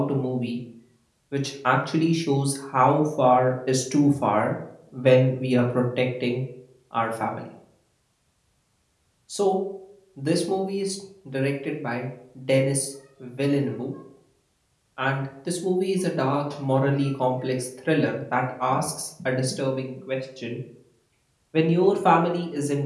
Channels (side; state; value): both; identical; correlation 1.00